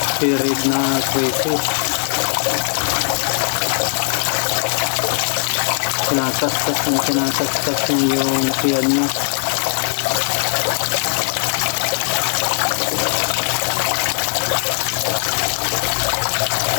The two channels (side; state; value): right; silent; digital silence